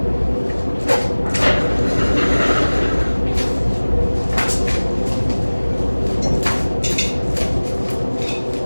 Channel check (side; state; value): both; inverted; correlation -1.00